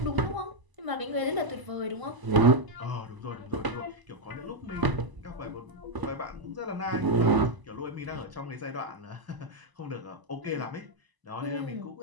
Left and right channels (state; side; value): late; left; 1.0 ms